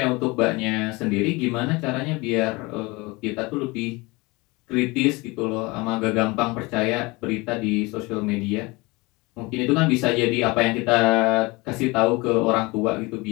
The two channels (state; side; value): quieter; right; 24.5 dB